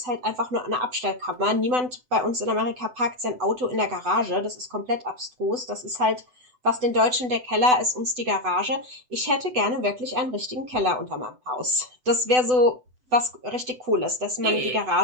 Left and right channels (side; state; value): left; late; 8.0 ms